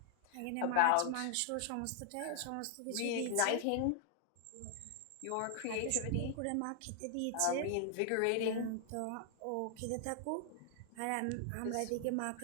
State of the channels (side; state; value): both; different; correlation 0.00